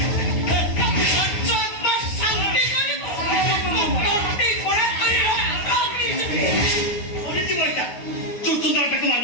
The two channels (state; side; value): late; right; 9.5 ms